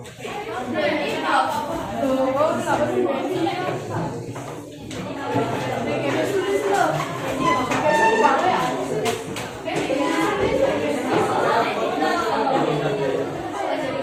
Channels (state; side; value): identical; both; correlation 1.00